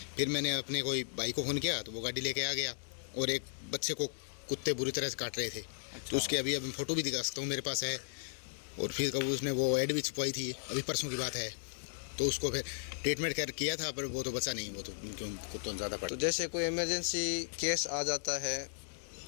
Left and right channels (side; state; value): right; silent; digital silence